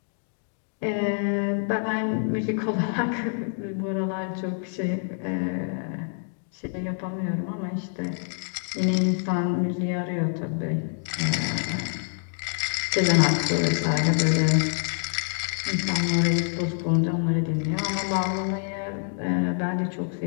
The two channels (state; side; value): silent; right; 61 dB below the other